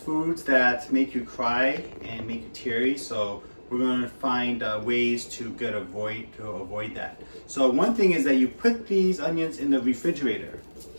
that make you cry and make you teary. So we're going to find ways to avoid that. So one thing is that you put these onions in the refrigerator.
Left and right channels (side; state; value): both; inverted; correlation -1.00